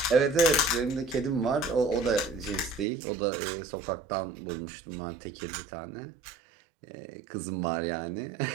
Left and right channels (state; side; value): drops out; left; at 2.9 s